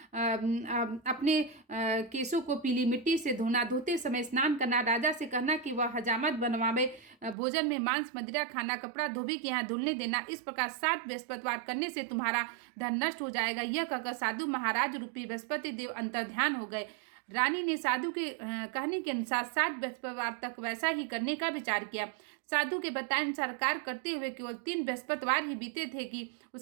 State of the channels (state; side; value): drops out; left; at 7.4 s